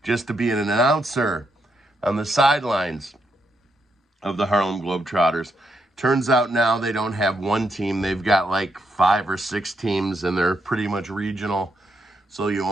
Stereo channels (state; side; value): normal; both; correlation 0.79